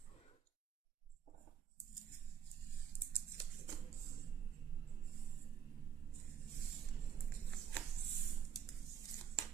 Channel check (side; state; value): left; quieter; 8.2 dB